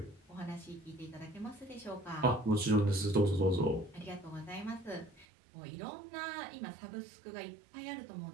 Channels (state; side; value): drops out; left; at 5.2 s